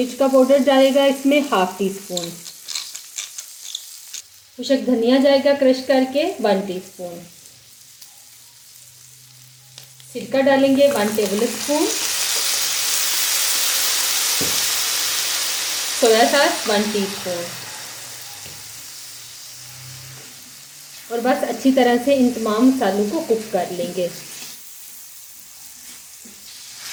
का पाउडर डालेगा इसमें 1/2 टीस्पून, खुशक धनिया जाएगा क्रश करके 1 टीस्पून, सिरका डालेंगे 1 table spoon, soya sauce 1 teaspoon और बस अच्छी तरह से इन तमाम मसालों को कुक कर लेंगे।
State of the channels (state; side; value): identical; both; correlation 1.00